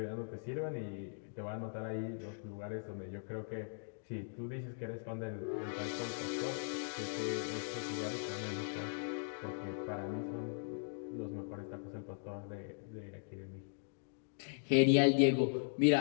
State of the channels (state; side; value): silent; right; digital silence